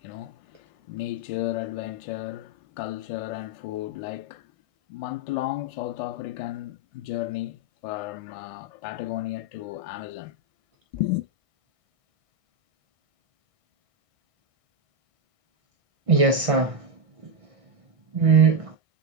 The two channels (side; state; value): left; late; 1.6 ms